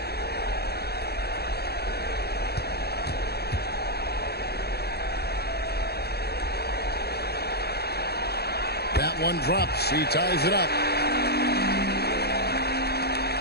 That one drops. He ties it up.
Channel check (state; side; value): late; right; 0.47 ms